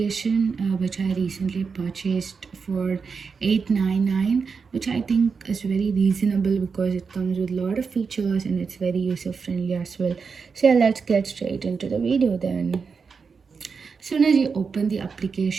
which I recently purchased for $8.99, which I think is very reasonable because it comes with a lot of features and it's very user friendly as well. So yeah, let's get straight into the video then. Soon as you open the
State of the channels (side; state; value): left; quieter; 5.4 dB